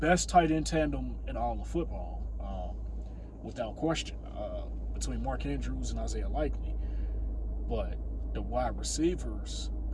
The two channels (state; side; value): identical; both; correlation 1.00